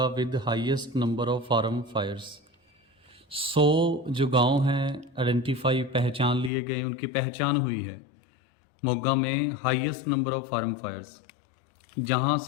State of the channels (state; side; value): drops out; right; at 6.5 s